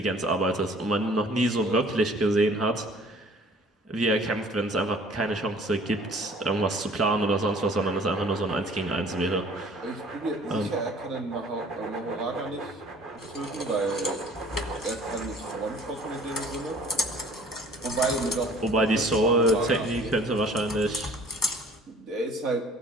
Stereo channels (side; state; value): both; normal; correlation 0.51